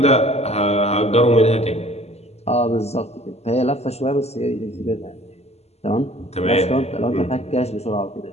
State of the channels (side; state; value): right; late; 0.30 ms